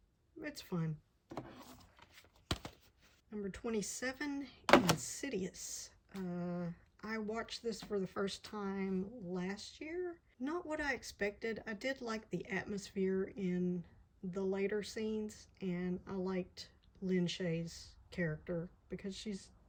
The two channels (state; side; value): identical; both; correlation 1.00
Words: It's fun. Number 27, Insidious. I watched this for the first time last year. Not what I expected. I did like the atmosphere in the later scenes, and I liked Lynn Shay's character because she's,